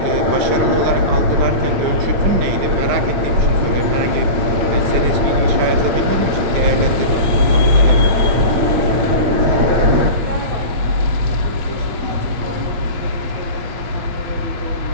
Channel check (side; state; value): left; late; 8.8 ms